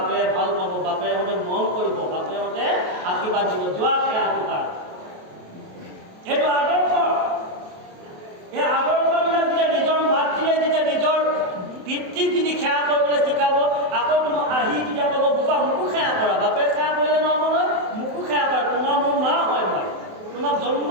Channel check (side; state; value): left; late; 28 ms